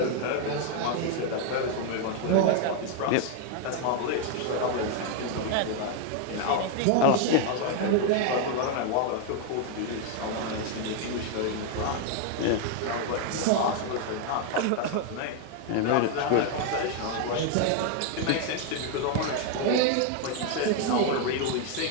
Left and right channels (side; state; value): both; different; correlation 0.01